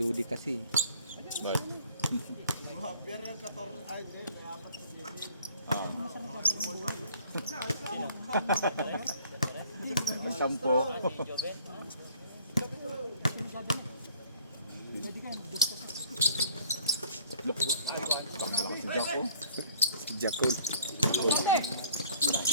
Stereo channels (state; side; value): inverted; both; correlation -0.53